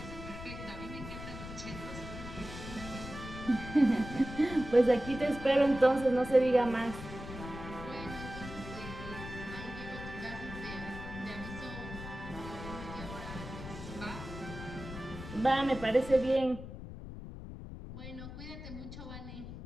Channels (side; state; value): left; noise; rumble, 10 dB below the sound